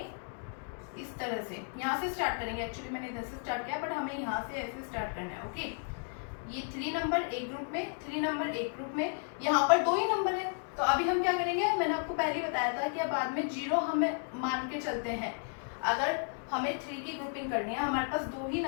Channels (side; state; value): right; silent; 55 dB below the other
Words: इस तरह से। यहाँ से स्टार्ट करेंगे, एक्चुअली मैंने इधर से स्टार्ट किया, बट हमें यहाँ से ऐसे स्टार्ट करना है। ओके, ये 3 नंबर एक ग्रुप में, 3 नंबर एक ग्रुप में, यहाँ पर 2 ही नंबर है। तो अभी हम क्या करेंगे, मैंने आपको पहले ही बताया था कि बाद में 0 हमें मान के चलते हैं। अगर हमें 3 की ग्रुपिंग करनी है, हमारे पास 2 ही